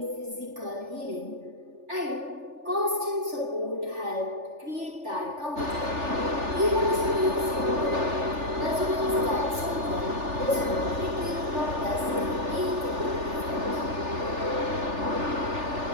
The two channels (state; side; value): late; left; 3.4 ms